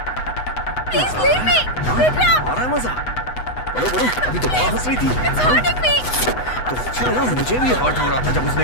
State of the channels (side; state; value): right; late; 8.0 ms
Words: Please leave me, Vikram. आ रहा है मजा? बोलो बोलो, अभी तो बहुत हंस रही थी। It's hurting me. तो अच्छा है ना, मुझे भी हर्ट हो रहा था जब